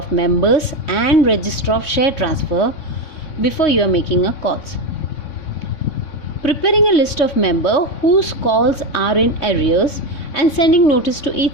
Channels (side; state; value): right; late; 3.5 ms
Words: members and register of share transfer before you are making a calls. Preparing a list of members whose calls are in arrears and sending notice to